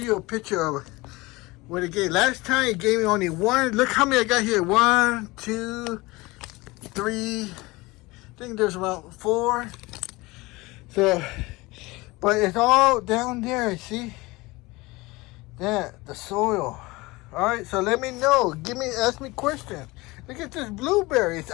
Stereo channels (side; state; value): right; quieter; 22.3 dB